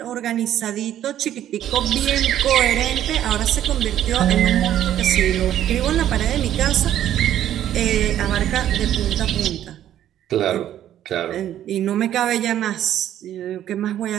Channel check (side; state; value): left; quieter; 11.5 dB